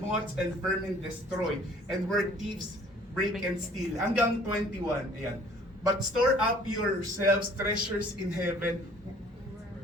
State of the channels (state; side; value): normal; both; correlation 0.54